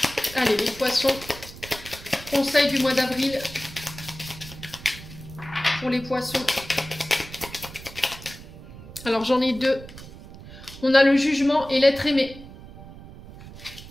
Allez, les poissons. Conseil du mois d'avril. Pour les poissons. Alors, j'en ai deux. On a le jugement et l'être aimé.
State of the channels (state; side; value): noise; right; rumble, 16 dB below the sound